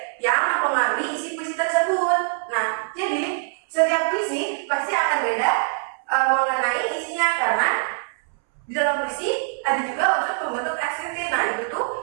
yang mempengaruhi isi puisi tersebut. Nah, jadi setiap puisi pasti akan beda mengenai isinya karena di dalam puisi ada juga unsur pembentuk ekstrinsik. Nah, itu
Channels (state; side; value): silent; left; 63 dB below the other